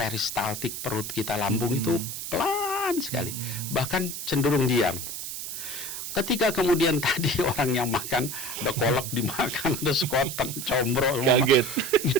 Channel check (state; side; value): noise; right; hiss, 7 dB below the sound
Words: perut kita, lambung itu pelan sekali, bahkan cenderung diam. Ketika kemudian tadi orang yang makan, ada kolak dimakan, ada sekoteng, combro,